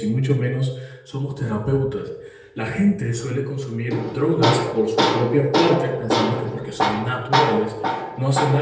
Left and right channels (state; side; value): identical; both; correlation 1.00